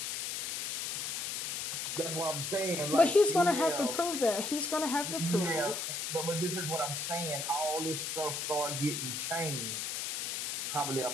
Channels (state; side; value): noise; left; hiss, 2 dB below the sound